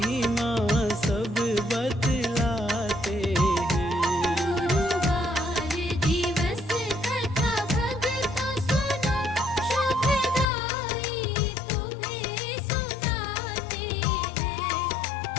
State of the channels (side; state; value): right; drops out; at 10.5 s